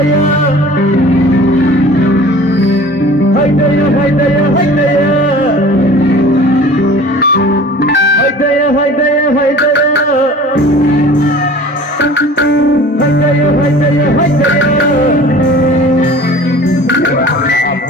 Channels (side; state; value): both; normal; correlation 0.44